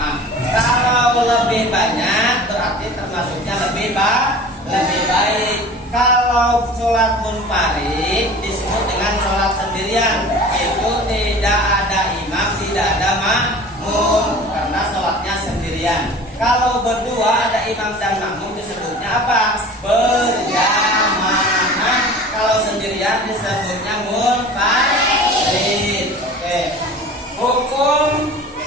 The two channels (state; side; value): normal; both; correlation 0.41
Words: Kalau lebih banyak berarti termasuknya lebih baik. Kalau sholat munfarid disebut dengan sholat sendirian. Itu tidak ada imam, tidak ada makmum, karena sholatnya sendirian. Kalau berdua ada imam dan makmum disebutnya apa? Berjamaah. Kalau sendirian disebutnya munfarid. Oke.